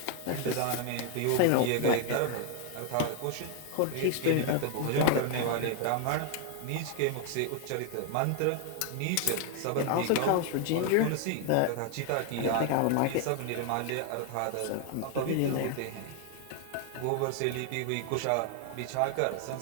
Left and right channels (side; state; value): both; different; correlation 0.00